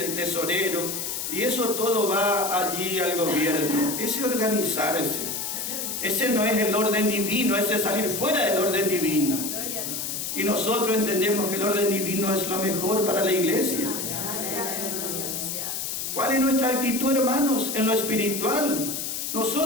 tesorero, y eso todo va allí al gobierno. Ese organizarse, ese no es el orden divino, ese es salir fuera del orden divino. Y nosotros entendemos que el orden divino es lo mejor para la iglesia. ¿Cuál es nuestra actitud, hermanos, en lo espiritual?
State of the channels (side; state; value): left; noise; hiss, 4 dB below the sound